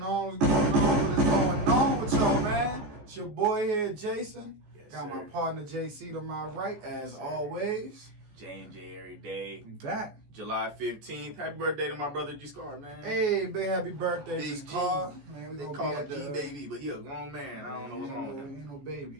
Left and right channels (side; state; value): left; late; 14 ms